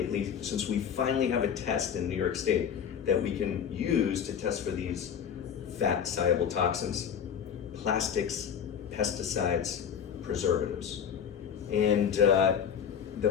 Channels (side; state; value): right; quieter; 7.9 dB